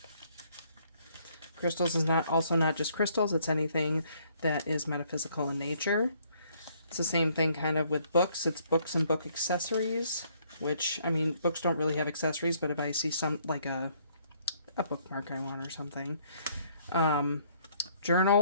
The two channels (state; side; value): inverted; both; correlation -0.66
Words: Crystals is not just crystals, it's anything that is metaphysical in nature. It's the same thing kind of with books. It's books and book accessories, which, I mean, books don't really have accessories, but if I see some, like a bookmark I want or something.